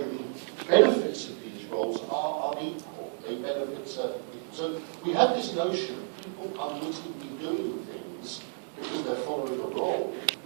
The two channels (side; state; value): left; silent; digital silence